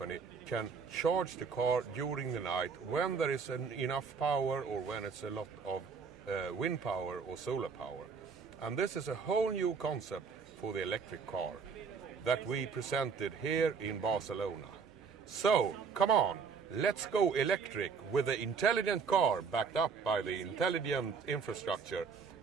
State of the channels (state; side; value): quieter; left; 5.6 dB